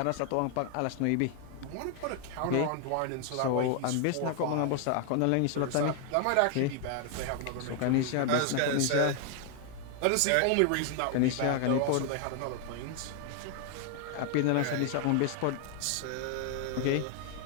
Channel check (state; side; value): different; both; correlation 0.00